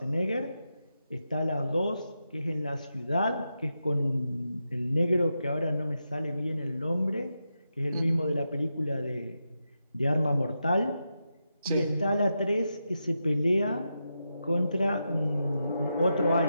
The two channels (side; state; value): both; inverted; correlation -0.87